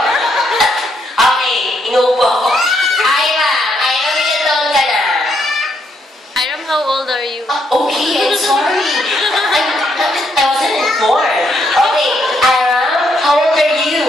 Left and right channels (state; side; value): normal; both; correlation 0.75